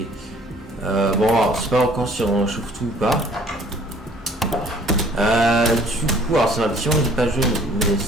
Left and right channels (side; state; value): both; normal; correlation 0.56